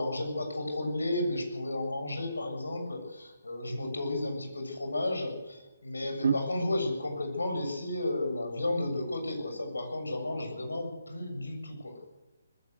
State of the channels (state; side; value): inverted; both; correlation -0.83